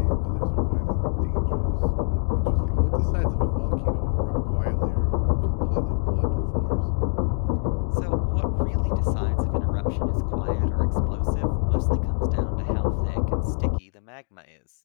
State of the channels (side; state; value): right; silent; 62 dB below the other